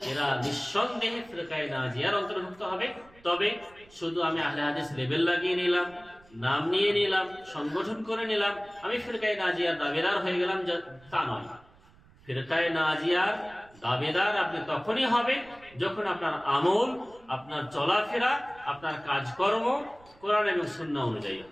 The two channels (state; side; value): noise; right; rumble, 26 dB below the sound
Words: এরা নিঃসন্দেহে ফিরকায়ে নাজিয়ার অন্তর্ভুক্ত হবে। তবে শুধু আমি আহলে হাদিস লেবেল লাগিয়ে নিলাম, নাম নিয়ে নিলাম, সংগঠন করে নিলাম, আমি ফিরকায়ে নাজিয়ার দাবিদার হয়ে গেলাম, তা নয়। ফিরকায়ে নাজিয়ার দাবিদার আপনি তখনই হবে যখন আপনার আমল, আপনার চলাফেরা, আপনার কাজকর্ম কোরআন এবং সুন্নাহ অনুযায়ী